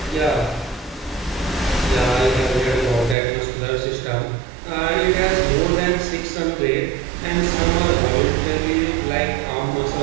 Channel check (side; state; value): left; drops out; at 3.2 s